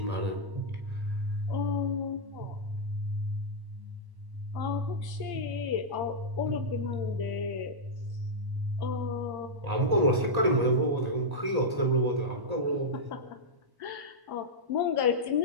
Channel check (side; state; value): left; late; 1.1 ms